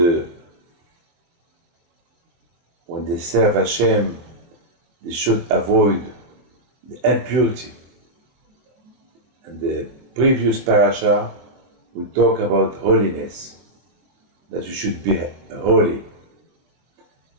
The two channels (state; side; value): late; left; 23 ms